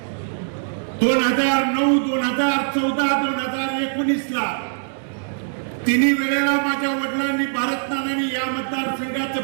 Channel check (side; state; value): left; silent; digital silence